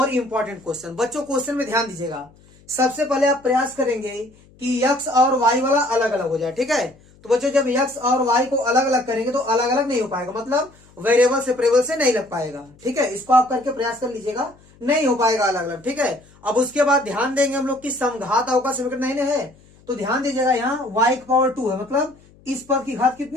इम्पोर्टेंट क्वेश्चन। बच्चों क्वेश्चन में ध्यान दीजिएगा। सबसे पहले आप प्रयास करेंगे कि x और y वाला अलग अलग हो जाए, ठीक है। तो बच्चों जब x और y को अलग अलग करेंगे तो अलग अलग नहीं हो पाएगा, मतलब वेरिएबल सेपरेबल से नहीं लग पाएगा, ठीक है। इसको आप करके प्रयास कर लीजिएगा, नहीं हो पाएगा अलग अलग, ठीक है। अब उसके बाद ध्यान देंगे हम लोग की समघात अवकल समीकरण नहीं है, तो ध्यान दीजिएगा यहाँ y की पावर 2 है, मतलब इस पद की घात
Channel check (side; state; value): left; noise; hum, 28 dB below the sound